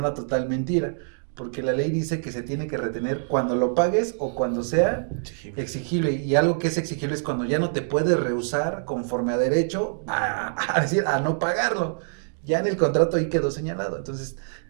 total mentira, porque la ley dice que se tiene que retener cuando lo pagues o cuando sea exigible. Y algo que es exigible es cuando ya no te puedes rehusar conforme a derecho a no pagarlo. Ya en el contrato ahí quedó señalado. Entonces,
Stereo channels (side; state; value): left; silent; digital silence